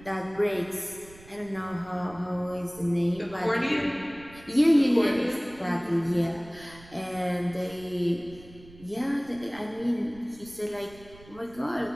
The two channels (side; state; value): right; noise; rumble, 22 dB below the sound